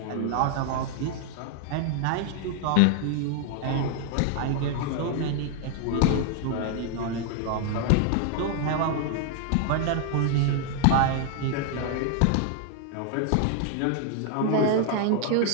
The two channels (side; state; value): both; different; correlation 0.00